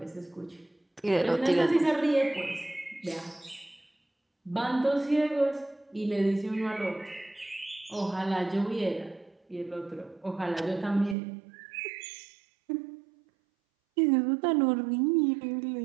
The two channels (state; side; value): drops out; left; at 11.2 s